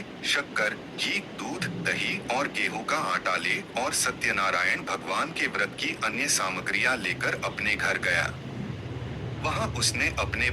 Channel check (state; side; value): identical; both; correlation 1.00